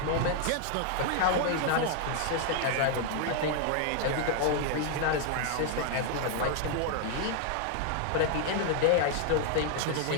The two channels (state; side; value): different; both; correlation 0.00